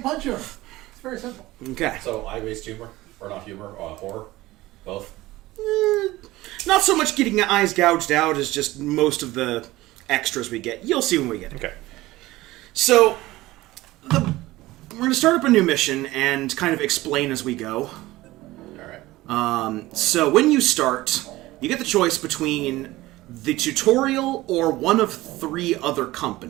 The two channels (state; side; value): quieter; left; 18.1 dB